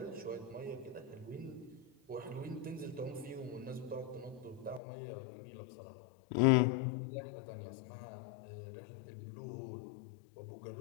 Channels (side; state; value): right; drops out; at 4.8 s